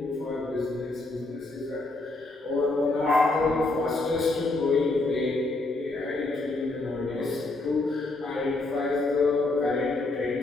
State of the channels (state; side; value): quieter; right; 3.0 dB